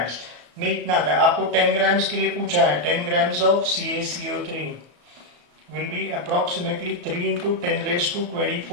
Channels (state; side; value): late; left; 34 ms